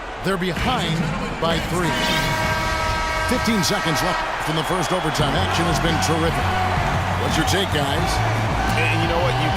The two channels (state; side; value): identical; both; correlation 1.00